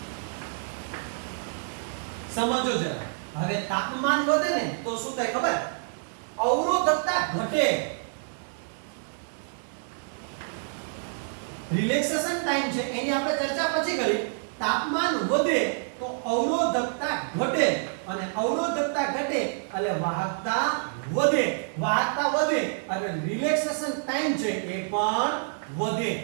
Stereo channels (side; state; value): left; silent; digital silence